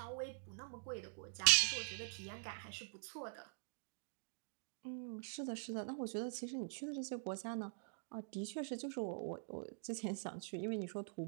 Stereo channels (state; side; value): silent; left; digital silence